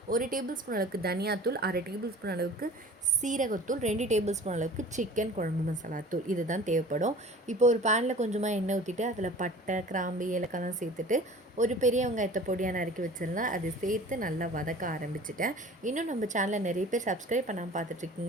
1 டேபிள் ஸ்பூன் அளவுக்கு தனியாத்தூள், 1/2 டேபிள் ஸ்பூன் அளவுக்கு சீரகத்தூள், 2 டேபிள் ஸ்பூன் அளவுக்கு சிக்கன் குழம்பு மசாலா தூள். இதுதான் தேவைப்படும். இப்போ ஒரு பேனில் கொஞ்சமாக எண்ணெய் ஊற்றிட்டு அதில் பட்டை, கிராம்பு, ஏலக்காய்லாம் சேர்த்துட்டு ஒரு பெரிய வெங்காயத்தை பொடியாக நறுக்கி வச்சிடலாம். அதை சேர்த்து நல்லா வதக்க ஆரம்பிச்சிட்டேன். இன்னும் நம்ம சேனலில் நிறைய பேர் சப்ஸ்கிரைப் பண்ணாமல்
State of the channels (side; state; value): both; normal; correlation 0.43